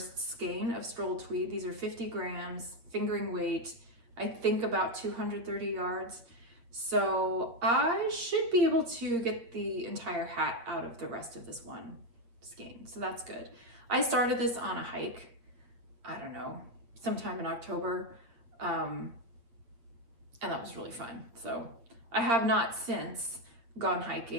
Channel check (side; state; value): left; late; 8.6 ms